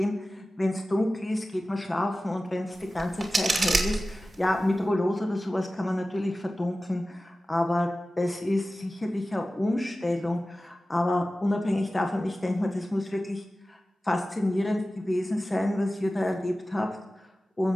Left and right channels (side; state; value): both; normal; correlation 0.96